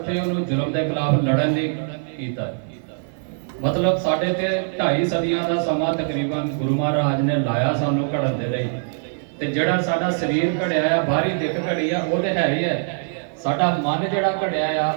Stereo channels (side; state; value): left; silent; 59 dB below the other